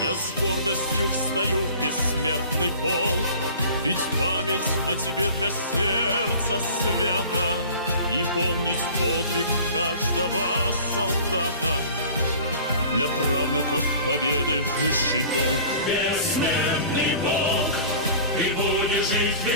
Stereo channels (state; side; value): inverted; both; correlation -0.44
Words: Я с гордостью встаю в бессмертный полк, ведь память о тебе для сердца свята, и помнить подвиг каждого солдата для правнуков победы высший долг. Бессмертный Бог, ты будешь жить